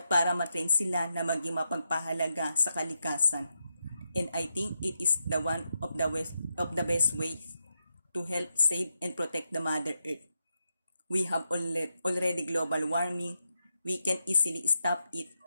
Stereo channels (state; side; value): inverted; both; correlation -0.85